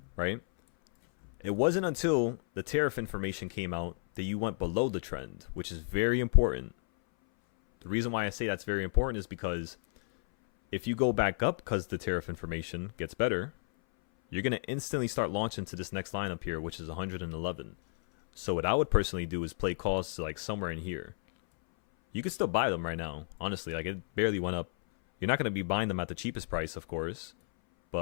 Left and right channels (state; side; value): silent; right; 56 dB below the other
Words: right? It wasn't until the tariff information came out that you went below the trend, which is very important. The reason why I say that's very important is because if you go back up because the tariff information gets better, you're going to instantly start launching to this next line up here, which is 111. So what I would personally do is play calls to like somewhere in here. You could still buy them right now. Honestly, like it barely went up. You're not going to be buying them at the cheapest price, of course.